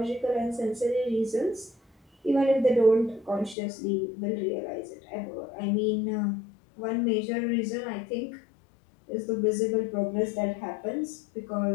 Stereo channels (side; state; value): right; drops out; at 3.6 s